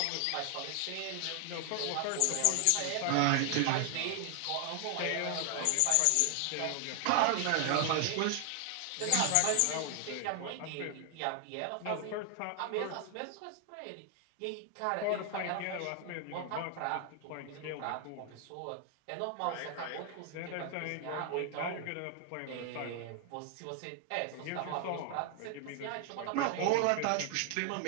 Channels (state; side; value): different; both; correlation 0.00